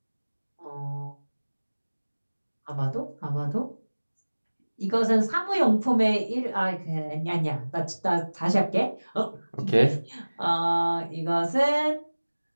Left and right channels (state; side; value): inverted; both; correlation -1.00